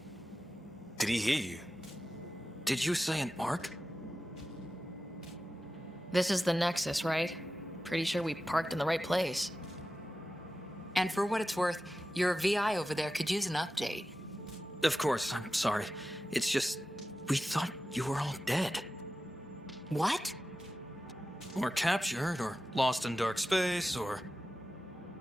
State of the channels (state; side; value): normal; both; correlation 0.93